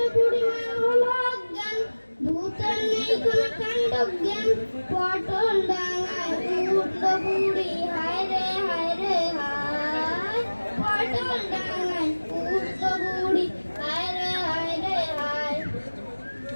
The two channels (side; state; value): both; inverted; correlation -1.00